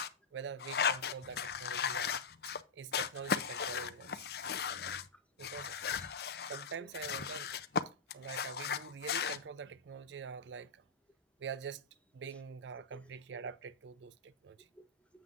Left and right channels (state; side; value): quieter; right; 4.1 dB